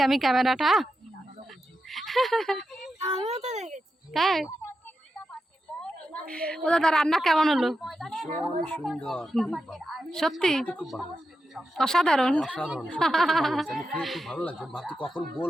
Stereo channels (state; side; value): normal; both; correlation 0.88